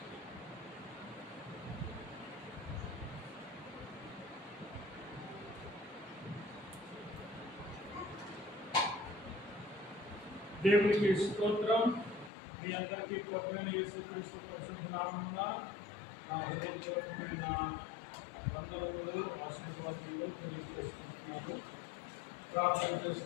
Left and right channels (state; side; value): drops out; right; at 12.3 s